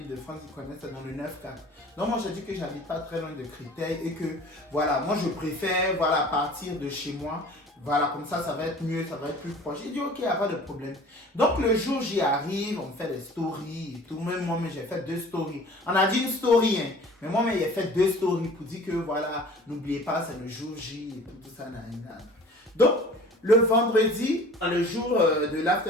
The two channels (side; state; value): both; normal; correlation 0.45